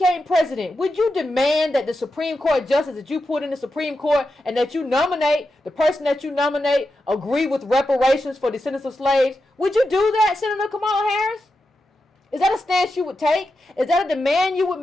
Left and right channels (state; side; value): normal; both; correlation 0.89